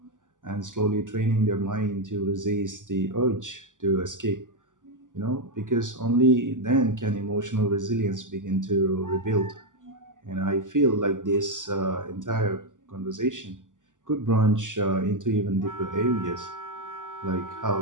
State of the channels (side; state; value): left; late; 0.87 ms